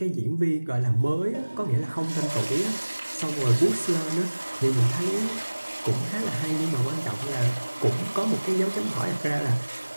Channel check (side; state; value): both; inverted; correlation -1.00